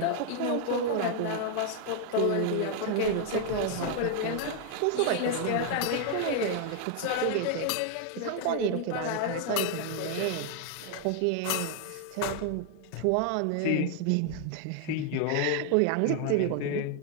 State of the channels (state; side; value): different; both; correlation 0.00